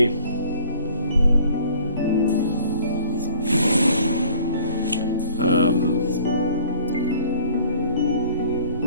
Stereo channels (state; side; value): inverted; both; correlation -0.53